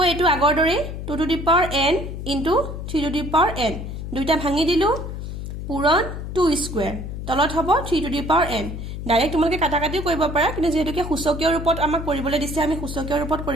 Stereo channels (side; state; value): left; noise; hum, 7 dB below the sound